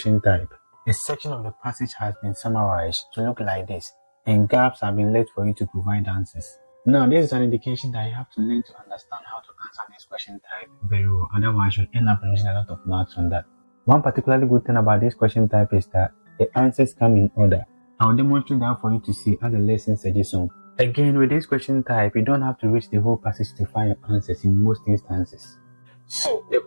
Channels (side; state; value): both; inverted; correlation -1.00